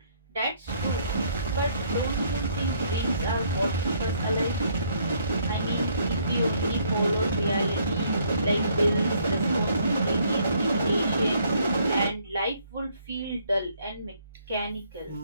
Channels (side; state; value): both; inverted; correlation -0.66